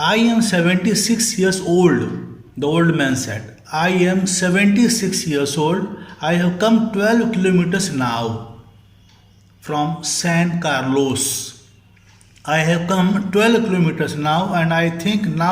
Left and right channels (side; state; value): both; identical; correlation 1.00